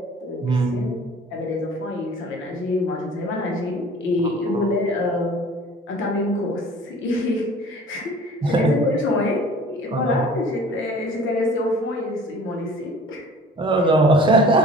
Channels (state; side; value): normal; both; correlation 0.47